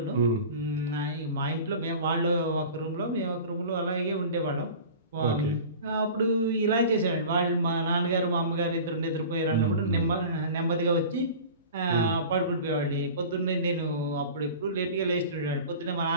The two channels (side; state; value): both; inverted; correlation -0.38